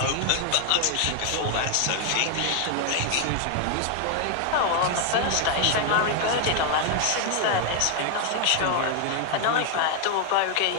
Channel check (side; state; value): both; different; correlation 0.00